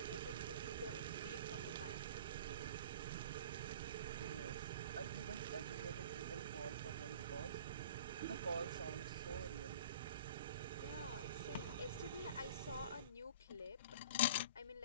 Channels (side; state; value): both; inverted; correlation -0.41